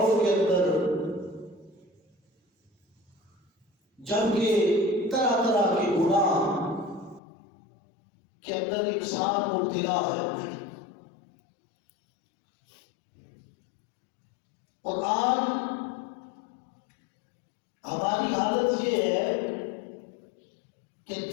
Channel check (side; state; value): right; drops out; at 7.2 s